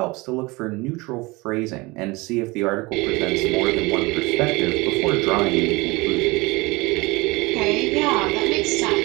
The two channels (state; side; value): quieter; left; 23.8 dB